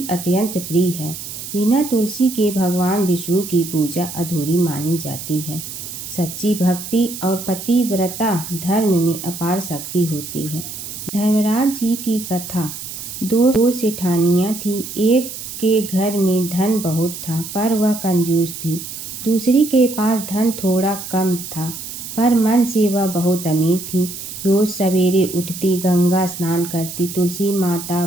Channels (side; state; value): right; noise; hiss, 9 dB below the sound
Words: अत्यंत प्रिय है। बिना तुलसी के भगवान विष्णु की पूजा अधूरी मानी जाती है। सच्ची भक्ति और पतिव्रता धर्म में अपार शक्ति होती है। धर्मराज जी की कथा। दो सेठानियाँ थी। एक के घर में धन बहुत था, पर वह कंजूस थी। दूसरी के पास धन थोड़ा कम था, पर मन से वह बहुत अमीर थी। रोज सवेरे उठती, गंगा स्नान करती, तुलसी माता,